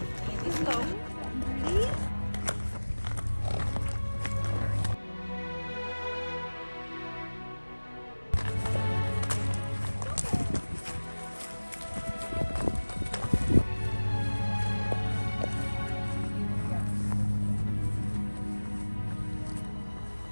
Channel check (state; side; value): inverted; both; correlation -1.00